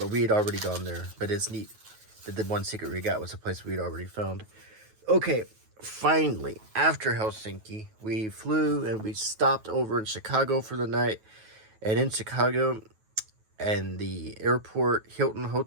we had already gone there. But it's neat that the one secret we got was a place we'd already found. Okay, finally, after Helsinki, we flew and we stopped over in Chicago for the night. And in Chicago, and the airport Hilton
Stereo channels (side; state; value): left; late; 9.3 ms